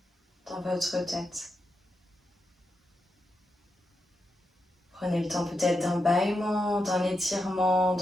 dans votre tête. Prenez le temps peut-être d'un bâillement, d'un étirement,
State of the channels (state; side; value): normal; both; correlation 0.86